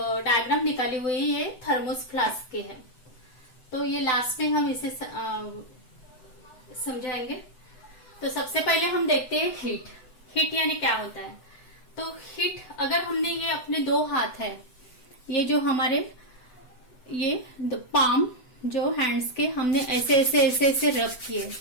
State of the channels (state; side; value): late; right; 7.9 ms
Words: डायग्राम निकाली हुई है ये थर्मोस फ्लास्क के है, तो ये लास्ट में हम इसे समझाएंगे। तो सबसे पहले हम देखते हैं हीट। हीट यानी क्या होता है। तो हीट, अगर हमने ये अपने दो हाथ है, ये जो हमारे ये पाम जो हैंड्स के हमने ऐसे ऐसे ऐसे ऐसे रब किए